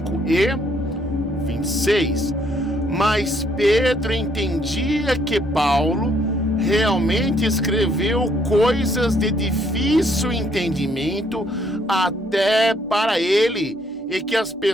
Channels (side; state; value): both; normal; correlation 0.68